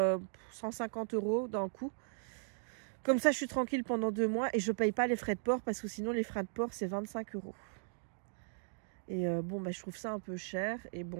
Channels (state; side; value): silent; left; digital silence